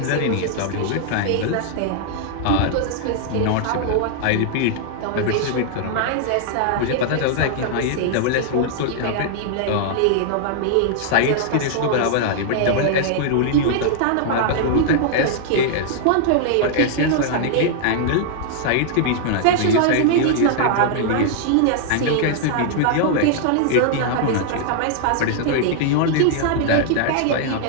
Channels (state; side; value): different; both; correlation -0.01